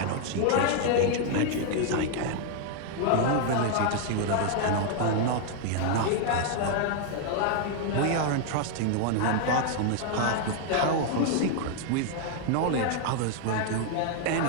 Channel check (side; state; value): both; different; correlation 0.00